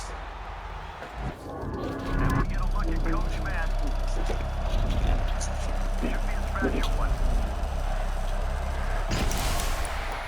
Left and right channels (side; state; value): both; identical; correlation 1.00